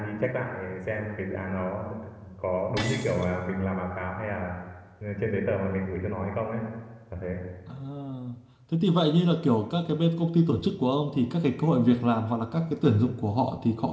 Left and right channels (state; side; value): identical; both; correlation 1.00